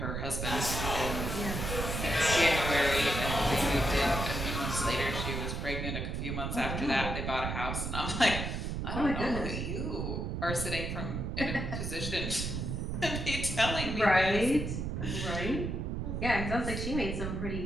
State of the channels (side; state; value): right; noise; rumble, 3 dB below the sound